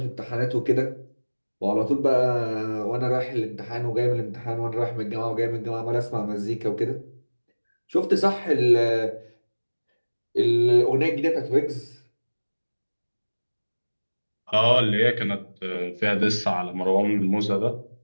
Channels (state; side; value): inverted; both; correlation -1.00